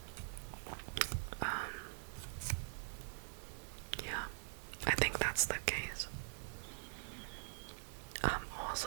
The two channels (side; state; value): left; silent; digital silence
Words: Yeah, I think that's the case. I'm